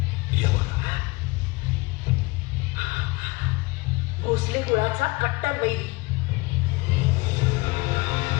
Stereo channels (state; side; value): quieter; right; 23.6 dB